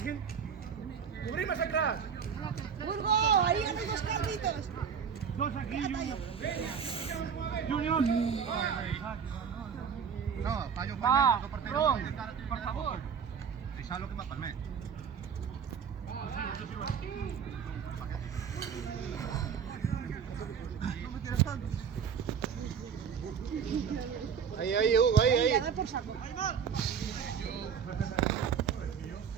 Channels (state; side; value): quieter; left; 7.1 dB